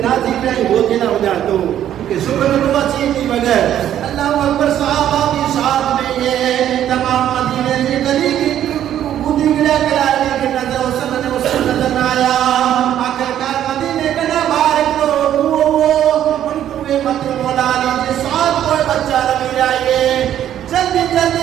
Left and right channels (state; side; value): quieter; left; 11.0 dB